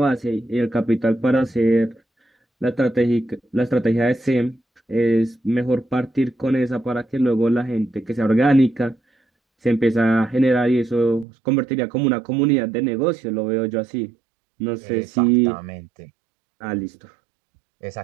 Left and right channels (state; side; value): drops out; left; at 11.2 s